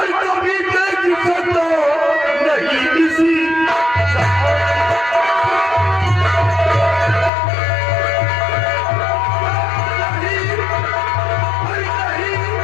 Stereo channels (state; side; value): drops out; right; at 7.3 s